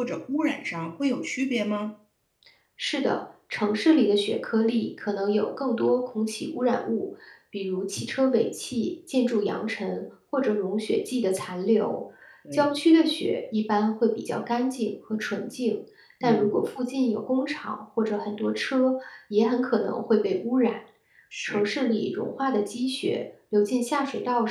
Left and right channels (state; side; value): identical; both; correlation 1.00